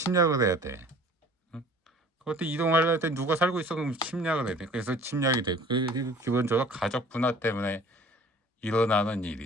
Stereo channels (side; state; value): both; normal; correlation 0.49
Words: 해야 돼. 그때 이동하려면 때 누가 살고 있어? 그럼 침략을 해야 돼. 그래서 침략이 돼. 기본적으로 가족 분화 때문에 일어나는